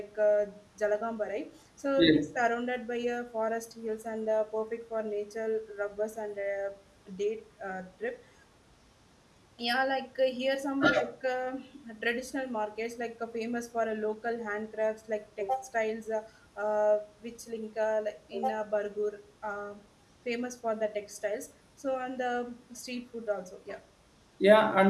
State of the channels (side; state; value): both; identical; correlation 1.00